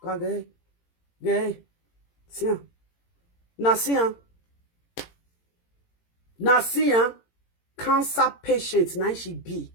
wagaye, see, Nasia. Nasia, cancer patient, now she be.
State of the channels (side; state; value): right; late; 18 ms